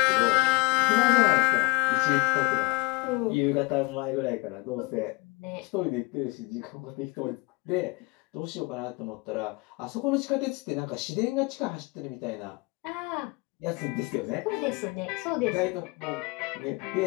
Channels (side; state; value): right; quieter; 25.9 dB